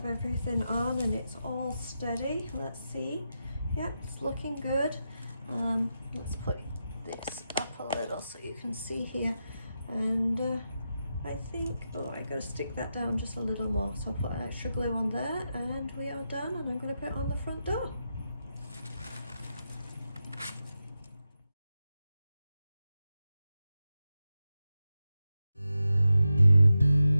everything on and it's all steady. Let's see. Yep, it's looking good. Let's put this up a little so you can see here. And I think, oh, I gotta stick that down just a little more. So I'll put extra glue on there and we are done, and I'm gonna put it on the front door.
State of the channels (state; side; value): inverted; both; correlation -0.89